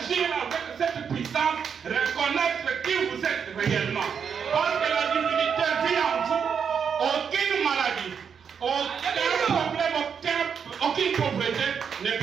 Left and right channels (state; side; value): quieter; left; 6.9 dB